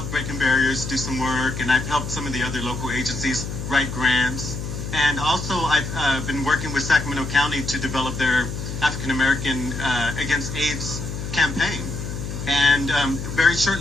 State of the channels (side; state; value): left; noise; hum, 6 dB below the sound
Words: Breaking Barriers do some work, and I've helped some of the other local agencies write grants. And also, I've been working with Sacramento County to develop their African American Against AIDS campaign. And very